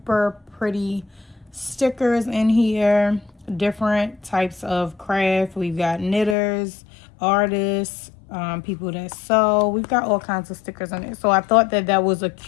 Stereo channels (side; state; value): right; drops out; at 6.4 s